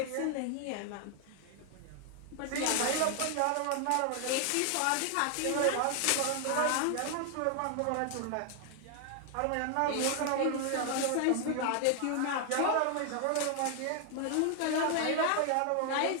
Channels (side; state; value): both; different; correlation 0.00